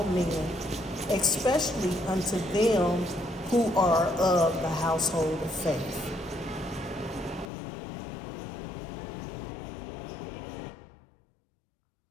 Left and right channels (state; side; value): drops out; right; at 7.5 s